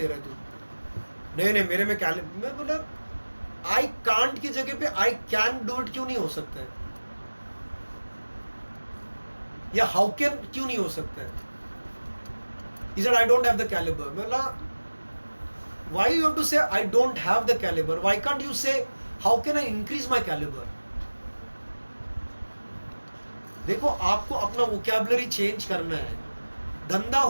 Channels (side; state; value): both; inverted; correlation -1.00